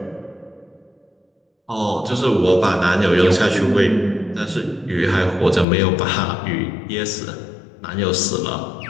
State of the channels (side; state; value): right; drops out; at 5.7 s